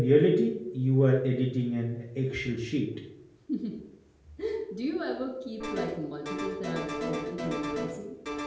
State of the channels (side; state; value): both; identical; correlation 1.00